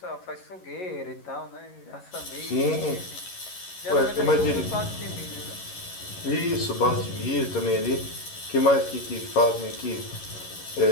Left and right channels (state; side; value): late; right; 11 ms